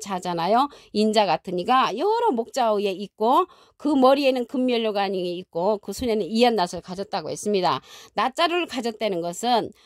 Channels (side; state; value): both; identical; correlation 1.00